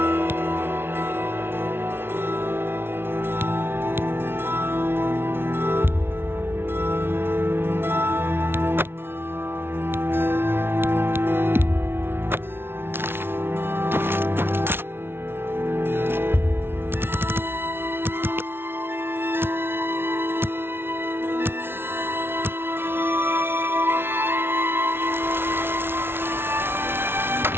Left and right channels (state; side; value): late; left; 0.11 ms